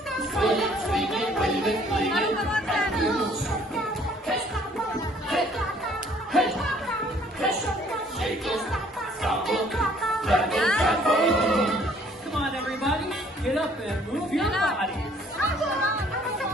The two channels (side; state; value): both; normal; correlation 0.60